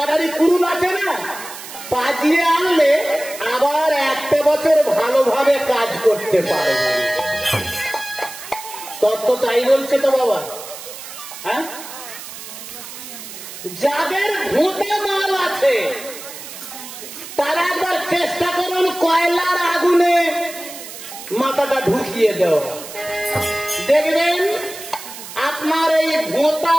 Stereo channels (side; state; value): right; noise; hiss, 12 dB below the sound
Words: কুরুন আছে না, পাজিয়ে আনলে আবার একটা বছর ভালোভাবে কাজ করতে পারবে। তত্ত্ব তাই বলছে তো বাবা। হ্যাঁ, যাদের ভোঁতা মাল আছে তারা একবার চেষ্টা করুন কয়লার আগুনে মাথাটা ঢুকিয়ে দেওয়া, দেখবেন আপনার এই ভোঁতা